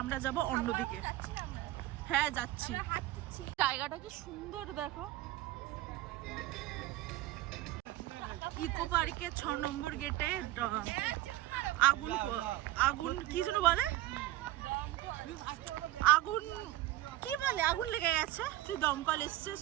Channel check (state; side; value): quieter; left; 16.0 dB